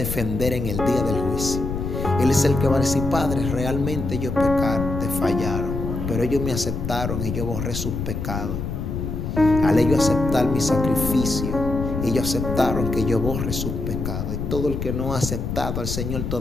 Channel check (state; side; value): noise; left; rumble, 4 dB below the sound